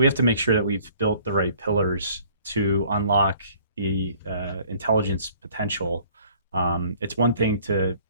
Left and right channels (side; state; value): both; inverted; correlation -0.55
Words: have to make sure that we've built the right pillars to unlock the intelligence potential. It's one thing to